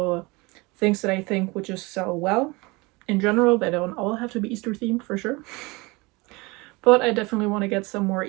things that I think would just sell well. In general, they don't all have to be Easter themed for sure. But I definitely want to get some more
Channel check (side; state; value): left; quieter; 24.9 dB